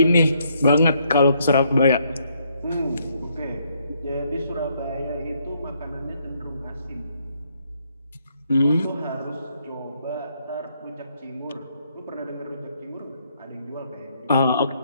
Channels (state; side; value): inverted; both; correlation -0.72